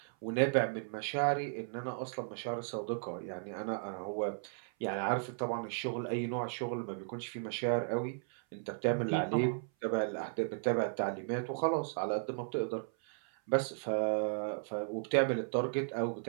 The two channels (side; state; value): left; silent; 54 dB below the other